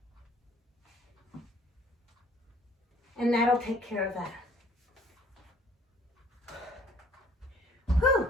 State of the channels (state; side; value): normal; both; correlation 0.57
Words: And that'll take care of that. Whew.